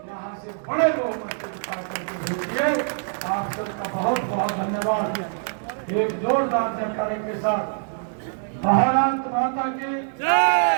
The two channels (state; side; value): silent; left; digital silence